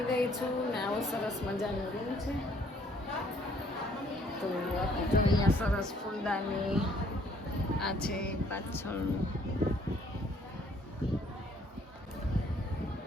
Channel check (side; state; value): both; normal; correlation 0.62